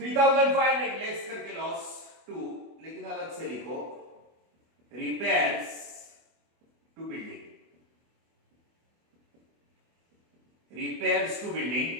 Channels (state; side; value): late; left; 24 ms